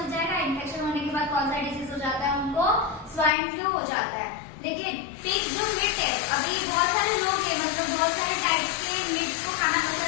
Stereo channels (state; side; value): drops out; right; at 3.3 s